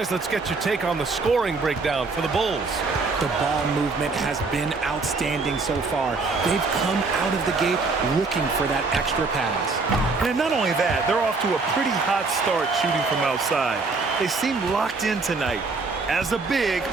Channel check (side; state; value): left; quieter; 4.0 dB